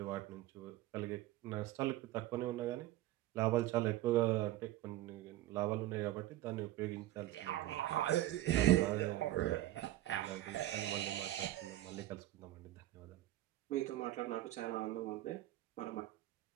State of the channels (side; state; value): left; quieter; 15.0 dB